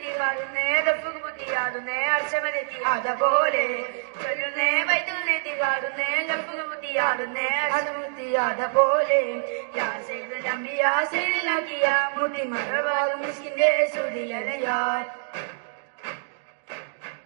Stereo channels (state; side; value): silent; left; digital silence